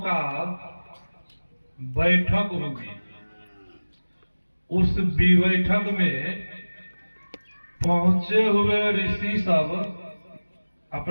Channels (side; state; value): both; inverted; correlation -1.00